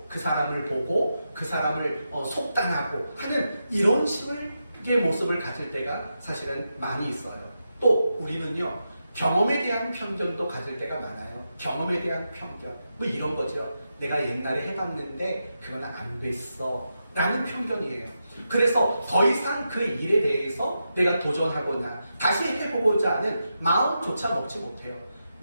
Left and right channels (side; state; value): both; inverted; correlation -0.87